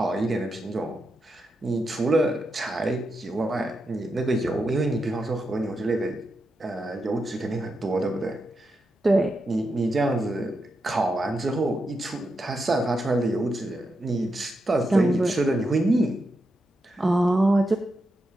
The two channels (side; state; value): both; normal; correlation 0.86